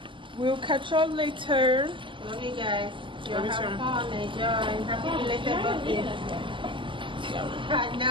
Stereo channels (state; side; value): late; left; 0.25 ms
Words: We'll catch y'all later. Love you guys. Love you too. Fun, enjoy. Happy belated birthday. I